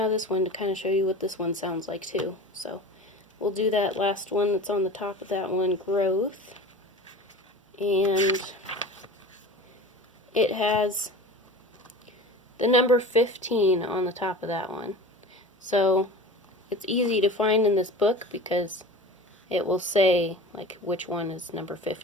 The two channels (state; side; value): normal; both; correlation 0.35